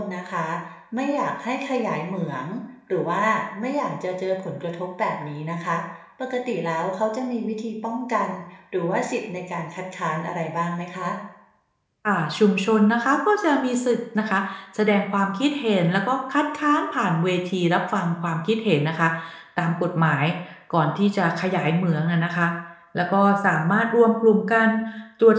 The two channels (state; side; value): identical; both; correlation 1.00